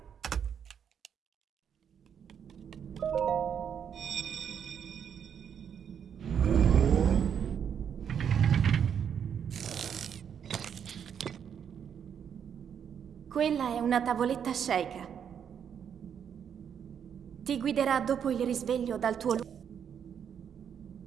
Quella è una tavoletta sceicca. Ti guiderà dopo il risveglio dal tuo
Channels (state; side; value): quieter; left; 8.1 dB